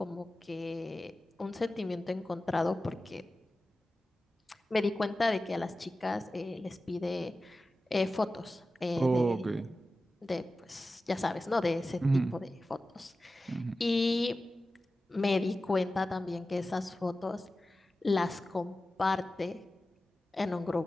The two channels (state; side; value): normal; both; correlation 0.94